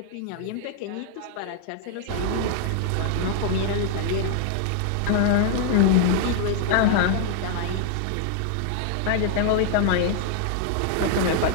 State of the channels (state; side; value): different; both; correlation 0.00